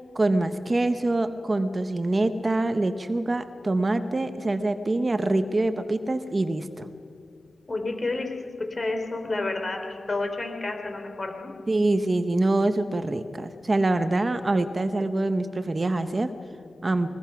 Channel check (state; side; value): normal; both; correlation 0.97